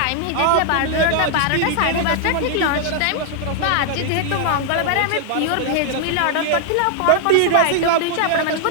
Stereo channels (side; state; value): both; different; correlation 0.00